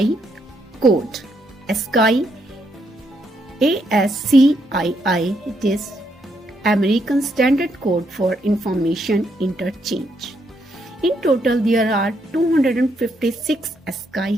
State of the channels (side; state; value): both; normal; correlation 0.76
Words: code. ASCII, ASCII, it is American Standard Code for Information Interchange. In total, there are 256